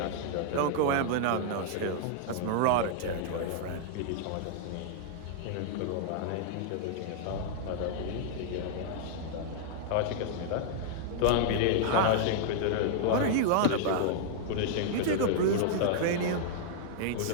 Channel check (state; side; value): different; both; correlation -0.01